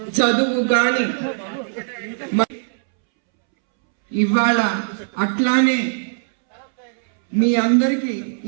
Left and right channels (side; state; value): left; silent; 66 dB below the other